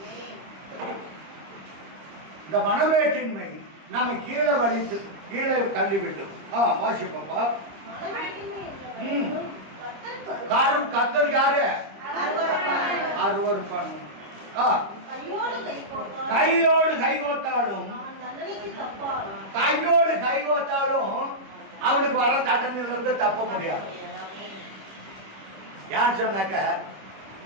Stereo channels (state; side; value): late; left; 25 ms